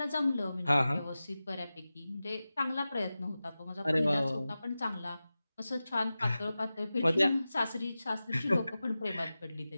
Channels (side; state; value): both; inverted; correlation -0.95